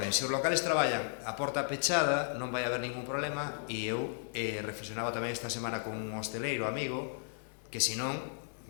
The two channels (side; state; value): right; silent; digital silence